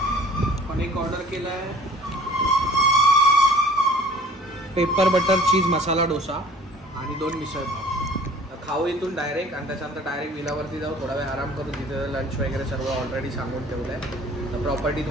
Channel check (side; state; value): both; normal; correlation 0.50